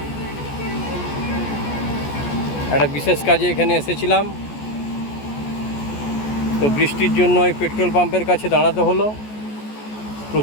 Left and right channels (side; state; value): right; late; 14 ms